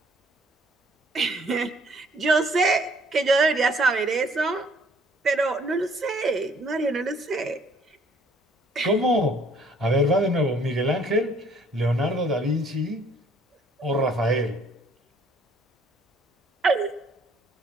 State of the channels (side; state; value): both; normal; correlation 0.60